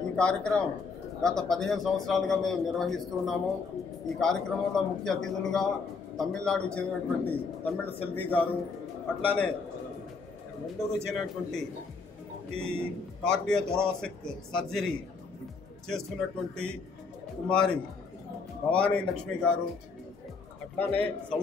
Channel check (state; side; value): quieter; right; 4.7 dB